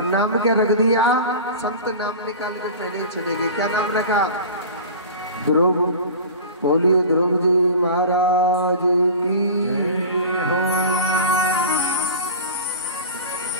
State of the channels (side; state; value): both; inverted; correlation -0.35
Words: नाम क्या रख दिया? संत नाम निकाल के पहले ही चले गए। क्या नाम रखा? ध्रुव। बोलिए ध्रुव जी महाराज की हो।